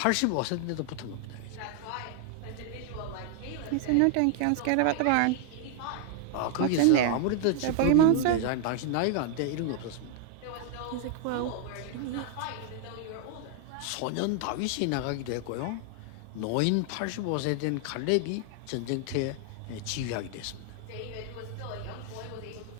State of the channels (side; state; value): both; different; correlation 0.00